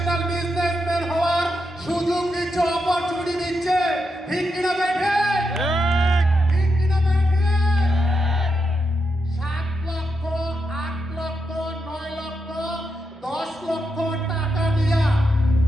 বিজনেসম্যান হওয়ার সুযোগ দিচ্ছে, অপরচুনিটি দিচ্ছে। ঠিক কিনা বেঠে? ঠিক কিনা বেঠে? 7 লক্ষ, 8 লক্ষ, 9 লক্ষ, 10 লক্ষ টাকা দিয়া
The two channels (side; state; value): both; normal; correlation 0.84